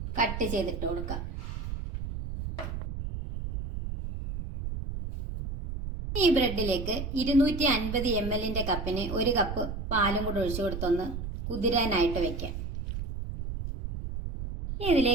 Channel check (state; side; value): noise; right; rumble, 6 dB below the sound